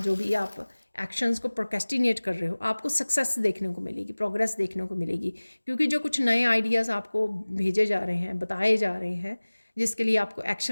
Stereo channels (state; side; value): inverted; both; correlation -1.00